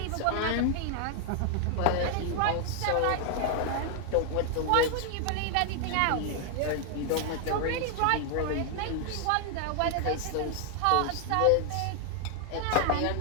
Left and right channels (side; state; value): both; different; correlation 0.00